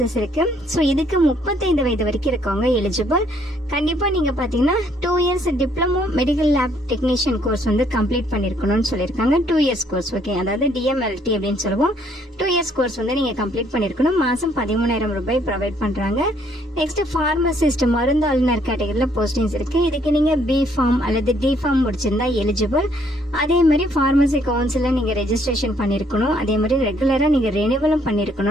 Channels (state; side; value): normal; both; correlation 0.67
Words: இருக்கு. ஸோ இதுக்கு 35 வயது வரைக்கும் இருக்கவங்க எலிஜிபிள். கண்டிப்பா நீங்க பாத்தீங்கன்னா 2 years diploma medical lab technician course வந்து கம்ப்ளீட் பண்ணிருக்கணும்னு சொல்லியிருக்காங்க. 2 இயர்ஸ் கோர்ஸ், ஓகே, அதாவது DMLT அப்படின்னு சொல்லுவோம். 2 இயர்ஸ் கோர்ஸ் வந்து நீங்க கம்ப்ளீட் பண்ணிருக்கணும். மாசம் 13,000 ரூபாய் ப்ரொவைட் பண்றாங்க. நெக்ஸ்ட் பார்மசிஸ்ட் மருந்தாளுநர் கேட்டகரியில போஸ்டிங்ஸ் இருக்கு. இதுக்கு நீங்க B ஃபார்ம் அல்லது D ஃபார்ம் முடிச்சிருந்தா எலிஜிபிள். அதே மாதிரி பார்மசி கவுன்சில நீங்க ரெஜிஸ்ட்ரேஷன் பண்ணிருக்கணும். அதே மாதிரி ரெகுலரா நீங்க ரெனிவலும்